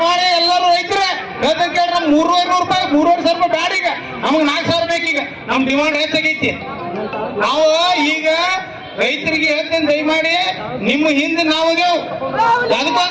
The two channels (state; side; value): identical; both; correlation 1.00